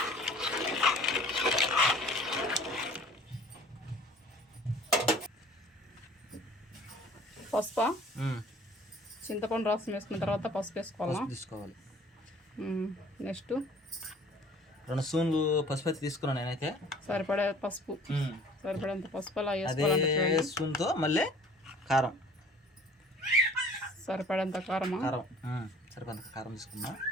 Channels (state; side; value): normal; both; correlation 0.51